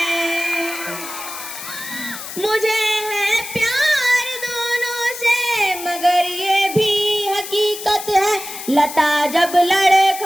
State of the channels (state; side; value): noise; left; hiss, 10 dB below the sound